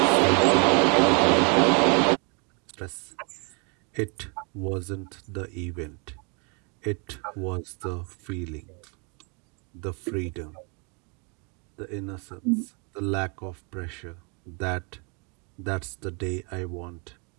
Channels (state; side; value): quieter; left; 34.3 dB